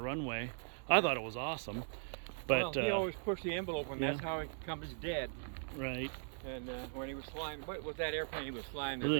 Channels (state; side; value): silent; left; digital silence